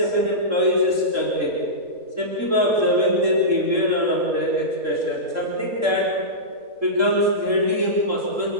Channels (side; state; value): left; late; 3.7 ms